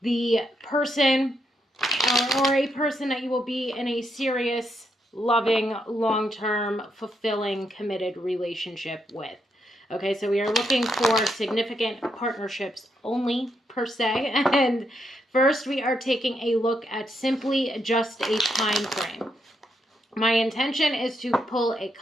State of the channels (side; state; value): both; normal; correlation 0.79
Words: the person or a person that you will be in a serious, loving, long-term, fulfilling, committed relationship with. Okay, so we are looking for significant partnerships only, per se. And first, we are taking a look at simply just a time frame. My intention is to pull a